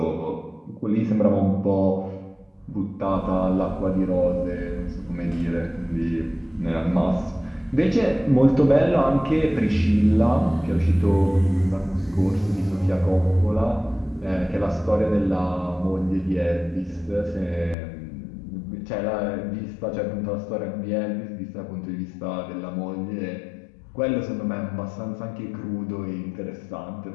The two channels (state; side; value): drops out; right; at 17.8 s